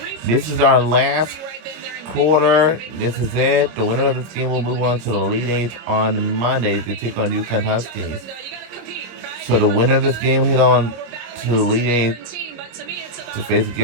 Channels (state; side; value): late; left; 25 ms